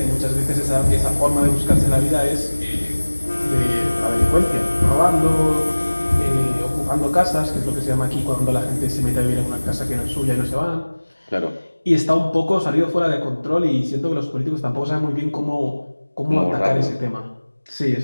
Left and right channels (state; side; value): inverted; both; correlation -1.00